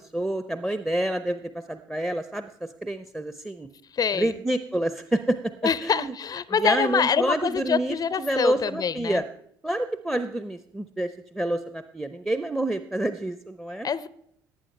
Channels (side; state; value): both; normal; correlation 0.67